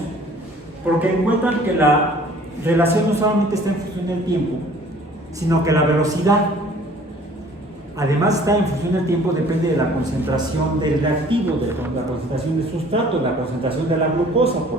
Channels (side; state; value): both; normal; correlation 0.52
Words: porque encuentran que la relación no solamente está en función del tiempo, sino que la velocidad, además está en función del tiempo, depende de la concentración del reactivo, de la concentración del sustrato, de la concentración de la glucosa,